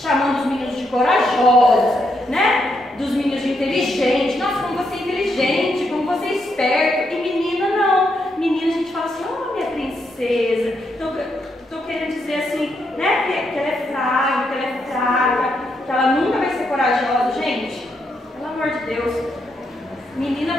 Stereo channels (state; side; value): normal; both; correlation 0.79